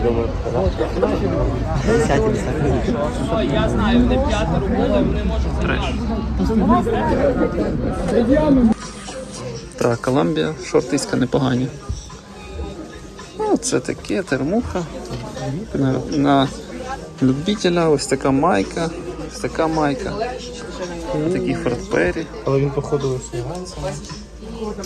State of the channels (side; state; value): both; identical; correlation 1.00